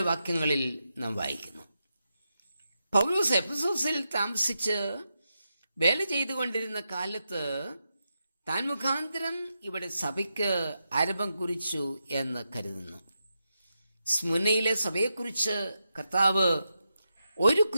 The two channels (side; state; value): both; inverted; correlation -0.86